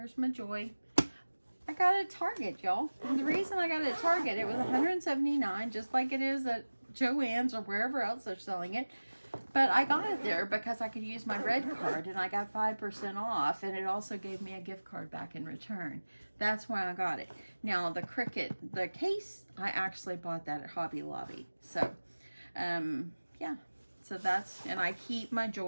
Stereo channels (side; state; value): both; inverted; correlation -1.00